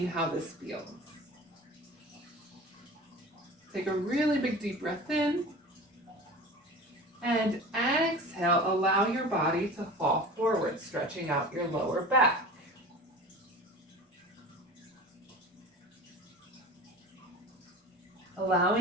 how this feels. Take a really big deep breath in. And exhale, allow your body to fall forward, stretching out your lower back.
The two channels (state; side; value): normal; both; correlation 0.36